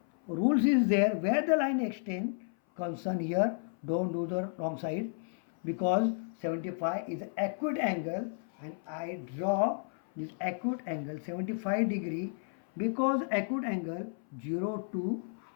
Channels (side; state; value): right; silent; 56 dB below the other